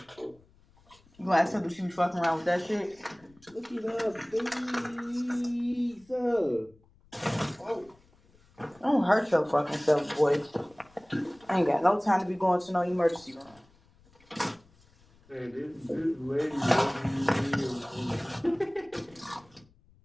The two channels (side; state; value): left; noise; rumble, 30 dB below the sound